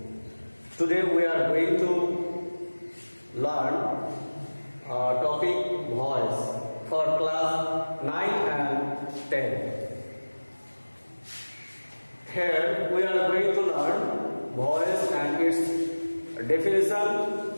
Today we are going to learn topic voice for class 9 and 10. Here we are going to learn voice and its definition,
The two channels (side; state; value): both; inverted; correlation -1.00